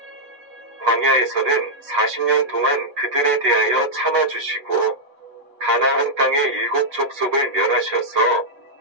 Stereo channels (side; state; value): left; late; 3.6 ms